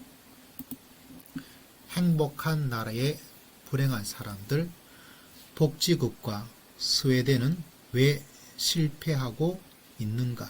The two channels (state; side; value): identical; both; correlation 1.00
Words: 행복한 나라의 불행한 사람들, 복지국가 스웨덴은 왜 실패하고